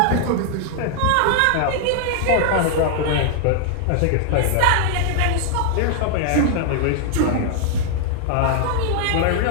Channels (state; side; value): different; both; correlation 0.00